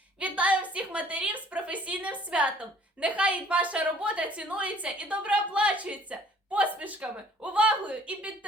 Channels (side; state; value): both; normal; correlation 0.56